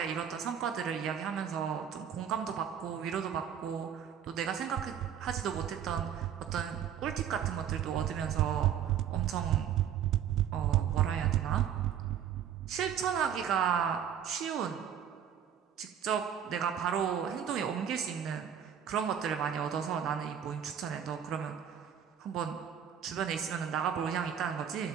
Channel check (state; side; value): quieter; left; 8.8 dB